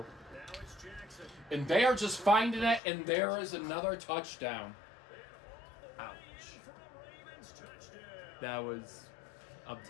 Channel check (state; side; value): drops out; right; at 2.8 s